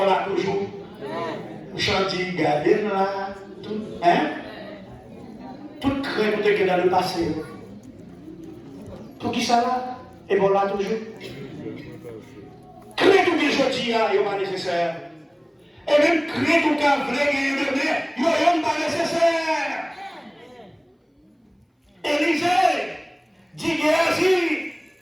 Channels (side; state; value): both; identical; correlation 1.00